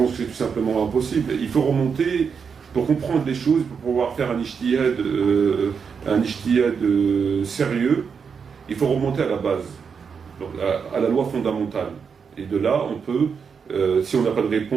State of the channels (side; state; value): left; quieter; 6.2 dB